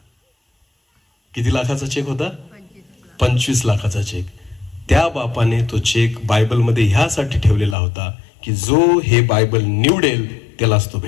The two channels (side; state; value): right; drops out; at 7.8 s